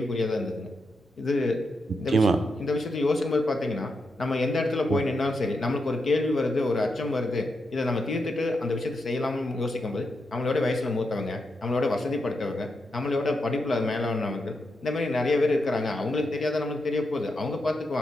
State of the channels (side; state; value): both; normal; correlation 0.84